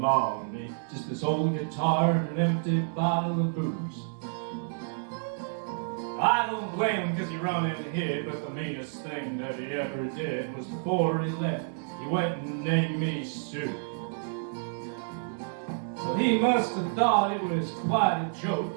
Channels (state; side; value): silent; left; digital silence